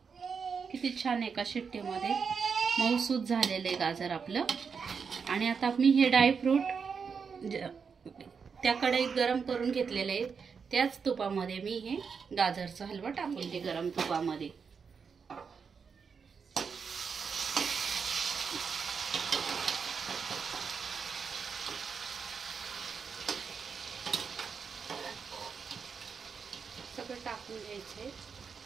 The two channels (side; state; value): left; quieter; 5.9 dB